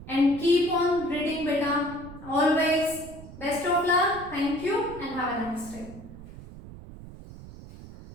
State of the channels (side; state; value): right; noise; rumble, 16 dB below the sound